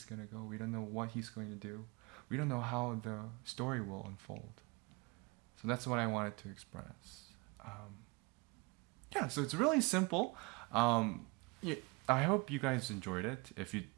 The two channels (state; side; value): quieter; left; 26.7 dB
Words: going to go. We don't know what he's going to do. We don't know how the story will unfold. So that's what I wanted to express. So it's really simple. I hope you guys enjoyed it. If you